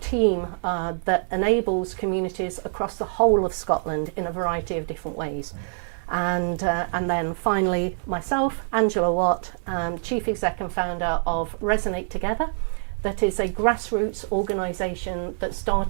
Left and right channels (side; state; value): left; silent; digital silence